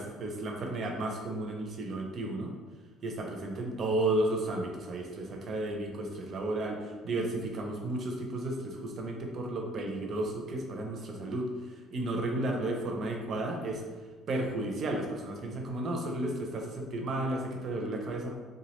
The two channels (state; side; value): normal; both; correlation 0.56